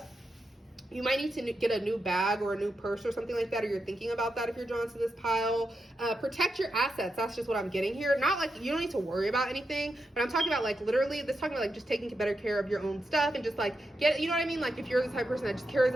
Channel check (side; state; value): both; normal; correlation 0.86